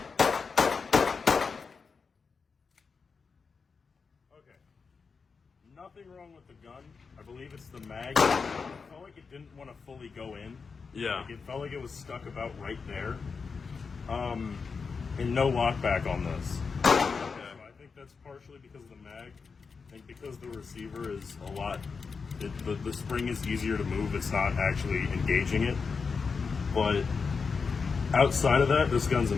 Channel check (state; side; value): quieter; right; 5.2 dB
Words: Nothing wrong with the gun. I believe it's the mag. It felt like it didn't want to fully go in. Yeah. Like it felt like it was stuck about right there. And no lockback on this. Okay. So I think that's partially because of the mag. I think because the receiver is a lot, the spring is easier to move. It's not actually engaging it. But outside of that, this gun's